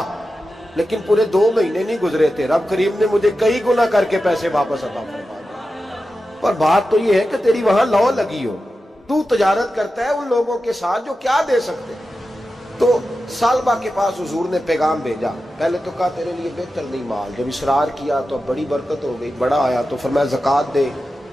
لیکن پورے 2 مہینے نہیں گزرے تھے، رب کریم نے مجھے کئی گنا کر کے پیسے واپس عطا فرما دیا۔ پر بات تو یہ ہے کہ تیری وہاں لو لگی ہو، تو تجارت کرتا ہے ان لوگوں کے ساتھ جو کیا دے سکتے۔ تو سالبہ کے پاس حضور نے پیغام بھیجا، پہلے تو کہا تیرے لیے بہتر نہیں مال، جب اصرار کیا تو بڑی برکت ہو گئی، بڑا آیا تو فرمایا زکوٰۃ دے،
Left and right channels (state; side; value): normal; both; correlation 0.92